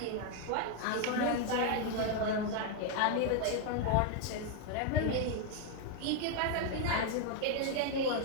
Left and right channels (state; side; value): different; both; correlation 0.00